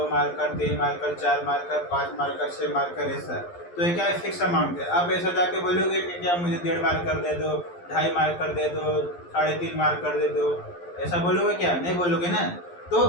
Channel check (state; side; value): late; right; 11 ms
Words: marker, 3 marker, 4 marker, 5 marker, 6 marker, ऐसा। तो ये क्या है, फिक्स अमाउंट है। आप ऐसा जाके बोलोगे कि क्या मुझे 1.5 मार्कर दे दो, 2.5 मार्कर दे दो, 3.5 मार्कर दे दो, ऐसा बोलोगे क्या? नहीं बोलोगे ना। तो